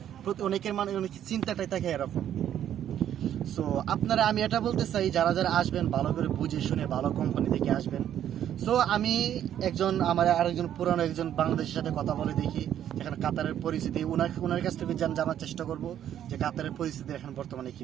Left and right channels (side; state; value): left; quieter; 10.5 dB